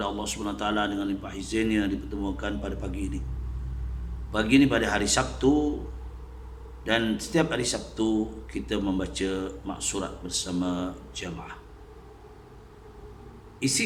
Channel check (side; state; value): both; identical; correlation 1.00